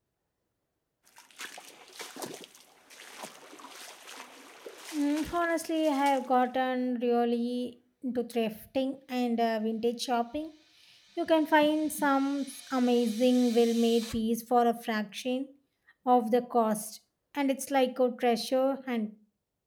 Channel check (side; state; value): both; identical; correlation 1.00